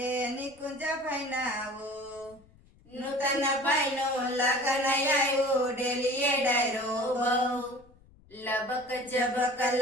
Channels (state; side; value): noise; left; rumble, 28 dB below the sound